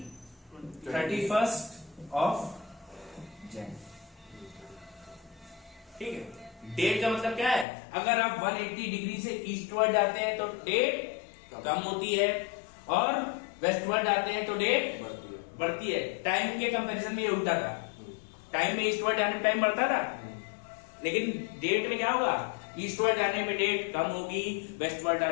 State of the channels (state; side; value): drops out; right; at 7.7 s